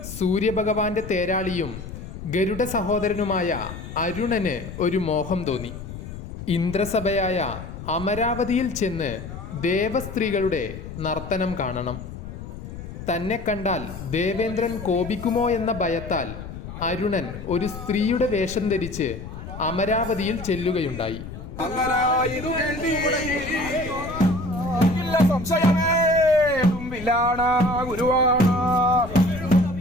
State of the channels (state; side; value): noise; left; rumble, 10 dB below the sound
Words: സൂര്യഭഗവാന്റെ തേരാളിയും ഗരുഡ സഹോദരനുമായ അരുണന് ഒരു മോഹം തോന്നി. ഇന്ദ്രസഭയായ അമരാവതിയിൽ ചെന്ന് ദേവസ്ത്രീകളുടെ നർത്തനം കാണണം. തന്നെ കണ്ടാൽ ദേവേന്ദ്രൻ കോപിക്കുമോ എന്ന ഭയത്താൽ അരുണൻ ഒരു സ്ത്രീയുടെ വേഷം ധരിച്ച് അമരാവതിയിൽ ചെല്ലുകയുണ്ടായി.